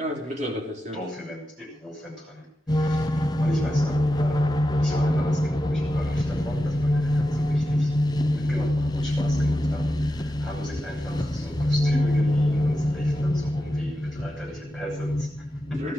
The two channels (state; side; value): normal; both; correlation 0.90